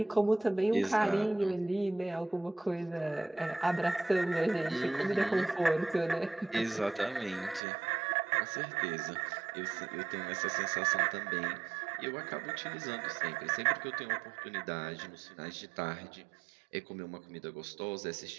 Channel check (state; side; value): drops out; left; at 7.6 s